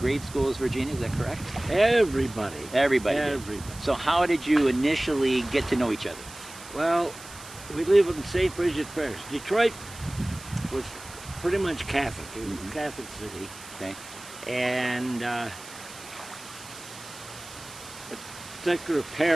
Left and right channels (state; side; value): noise; right; hiss, 16 dB below the sound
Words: grade school as Virginia, is that correct? Everybody. Everybody did. Everybody. So how did you initially get to know each other? Well, we live in St. Bridget Parish. Detroit was pretty much Catholic. It was a Catholic city. Okay. And a particular